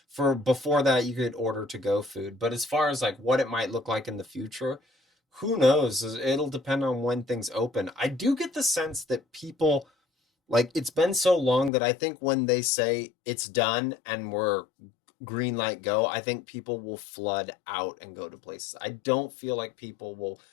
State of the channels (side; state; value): right; drops out; at 11.7 s